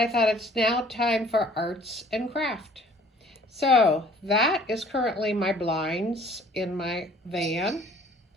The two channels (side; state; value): both; normal; correlation 0.54